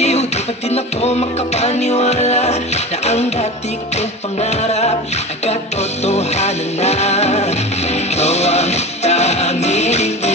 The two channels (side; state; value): both; normal; correlation 0.31